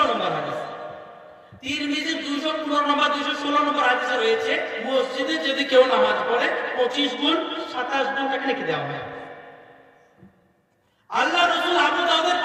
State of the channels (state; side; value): identical; both; correlation 1.00